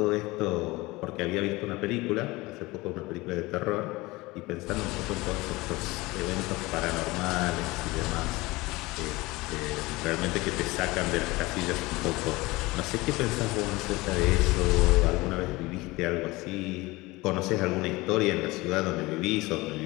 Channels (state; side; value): quieter; right; 21.6 dB